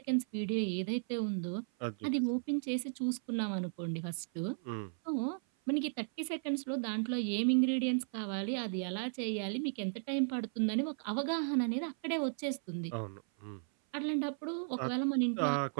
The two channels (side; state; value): left; silent; 54 dB below the other